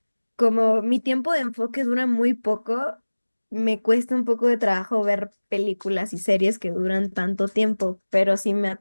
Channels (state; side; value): inverted; both; correlation -1.00